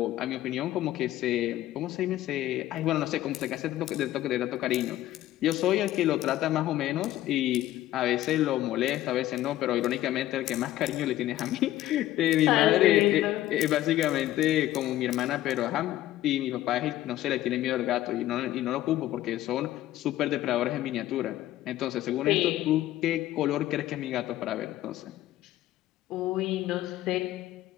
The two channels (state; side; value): quieter; right; 14.4 dB